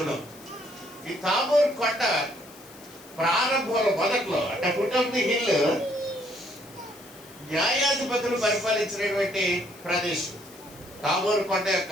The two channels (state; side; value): noise; left; hiss, 21 dB below the sound